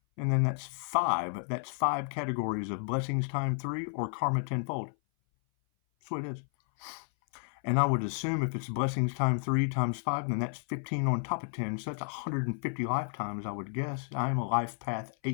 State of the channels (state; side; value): silent; right; 56 dB below the other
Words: And then that's 5. That's 5 categories of blessings times 3 or karma 10-fold. That's what it is. And I would assume if it's blessings times 3 times 5, then that's 15 on top of 10. So that's 150 lifetimes, I would guess. I am a life path